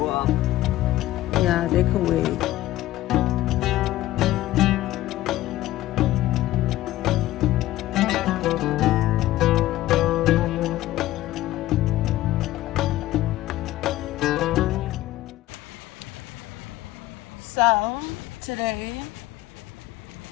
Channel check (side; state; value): right; quieter; 15.6 dB